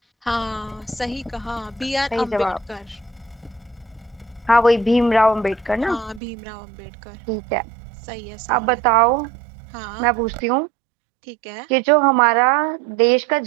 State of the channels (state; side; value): drops out; left; at 6.2 s